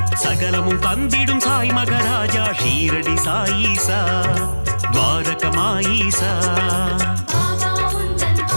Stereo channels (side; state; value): both; inverted; correlation -1.00